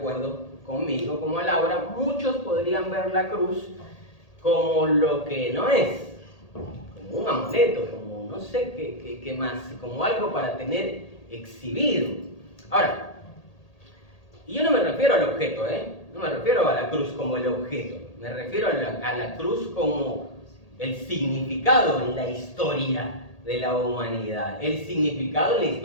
conmigo, como a Laura, muchos podrían ver la cruz como lo que no es, como un amuleto, como no sé qué más, como algo para tener exhibido. Ahora, y yo no me refiero al objeto, no me refiero a la cruz como el objeto, me refiero a la cruz como el significado en la historia de la humanidad, el significado en la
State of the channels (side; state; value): right; late; 1.8 ms